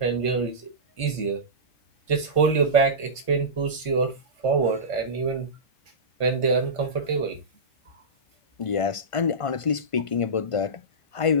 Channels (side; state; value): right; late; 1.5 ms